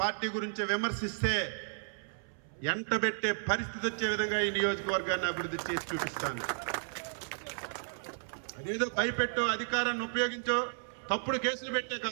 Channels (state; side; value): silent; left; 55 dB below the other